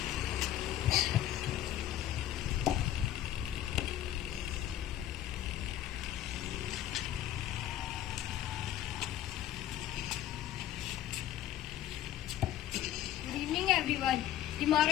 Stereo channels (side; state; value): right; quieter; 12.3 dB